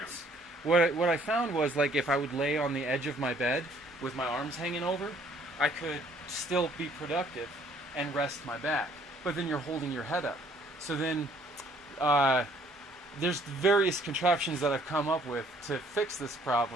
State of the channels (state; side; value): normal; both; correlation 0.61